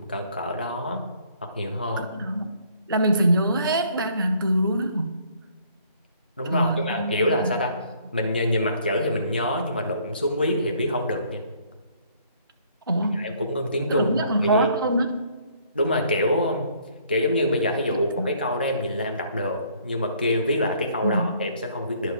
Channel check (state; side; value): inverted; both; correlation -0.62